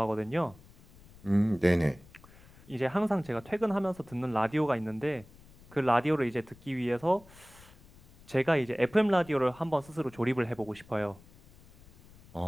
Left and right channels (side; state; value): left; noise; rumble, 24 dB below the sound